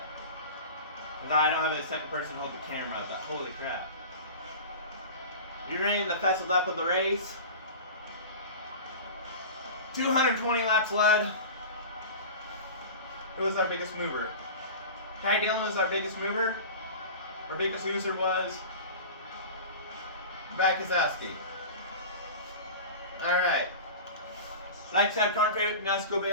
I don't have a second person hold the camera. But holy crap. You're running the fastest lap of the race. 220 laps led. Who was our biggest mover? Ty Dillon was our biggest mover. Our biggest loser was Brad Keselowski. Alright. Like, subscribe, comment, favorite, NASCAR Cup Series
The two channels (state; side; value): inverted; both; correlation -0.33